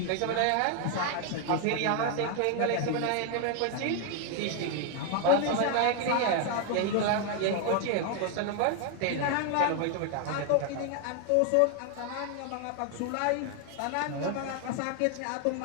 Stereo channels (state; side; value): different; both; correlation 0.00